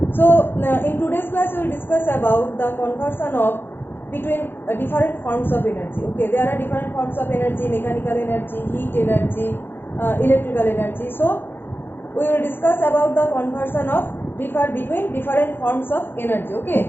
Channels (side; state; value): right; late; 0.10 ms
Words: So in today's class we will discuss about the conversion of between different forms of energy. Okay, there are different forms of energy: mechanical energy, heat energy, electrical energy. So we will discuss about the conversion of between different forms of energy.